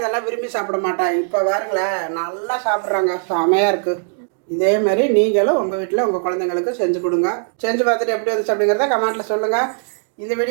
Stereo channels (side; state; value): left; silent; 62 dB below the other